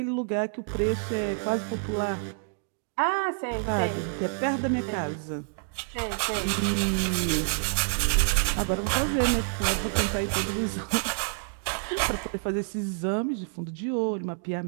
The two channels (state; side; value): silent; left; digital silence